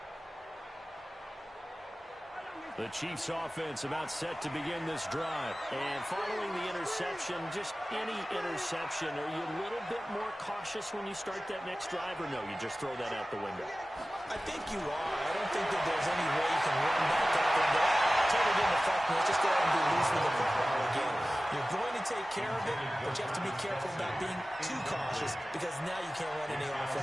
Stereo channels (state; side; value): normal; both; correlation 0.96